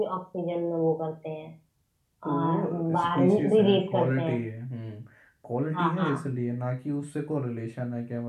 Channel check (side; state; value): both; identical; correlation 1.00